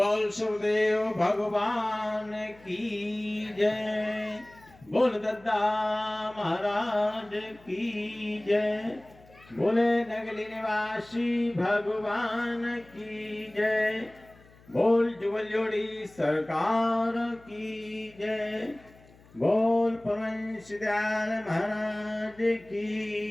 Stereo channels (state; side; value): noise; left; hum, 26 dB below the sound